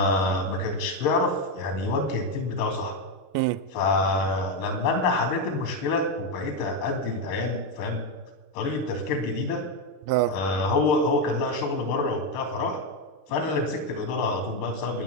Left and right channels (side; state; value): right; late; 6.6 ms